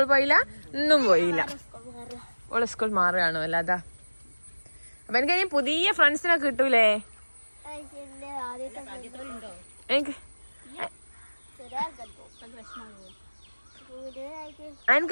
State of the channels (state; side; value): inverted; both; correlation -1.00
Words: പോയില്ല, ഇന്നും പോയില്ല. ഓളെ സ്കൂൾ മാറുകയാണോ അല്ലാതാ. അപ്പൊ എനിക്ക് ഇനി പുതിയ ഫ്രണ്ട്സിനെ കിട്ടൂലേ? എനിക്ക്